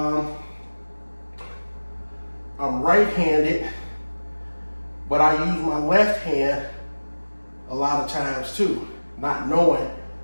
right-handed, but I use my left hand a lot of times too, not knowing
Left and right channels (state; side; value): inverted; both; correlation -1.00